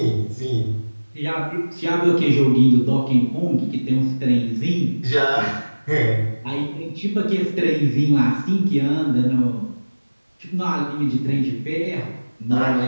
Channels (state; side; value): inverted; both; correlation -1.00